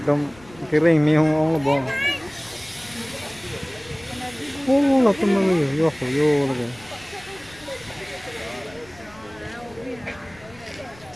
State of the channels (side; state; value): left; noise; rumble, 24 dB below the sound